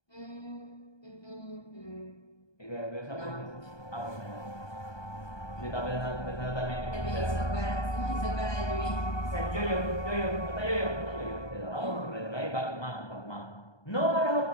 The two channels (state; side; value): late; right; 1.2 ms